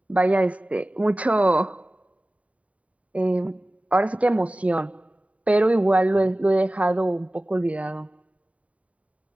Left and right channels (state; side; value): late; left; 0.067 ms